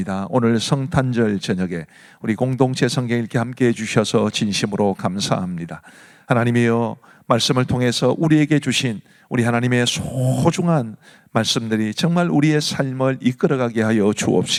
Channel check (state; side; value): identical; both; correlation 1.00